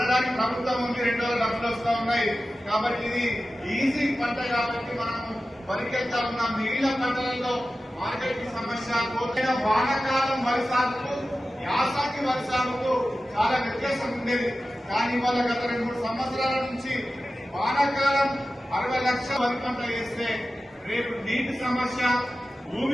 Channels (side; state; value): both; normal; correlation 0.94